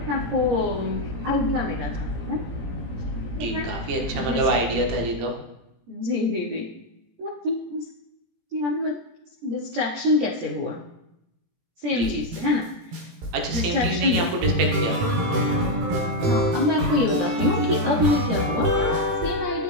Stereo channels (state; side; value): late; left; 18 ms